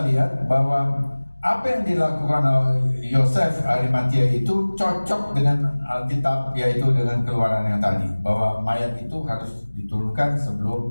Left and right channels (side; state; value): both; inverted; correlation -1.00